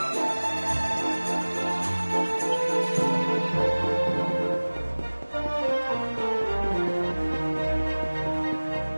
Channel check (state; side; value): inverted; both; correlation -1.00